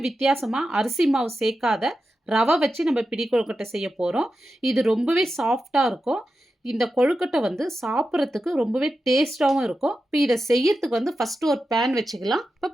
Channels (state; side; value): normal; both; correlation 0.90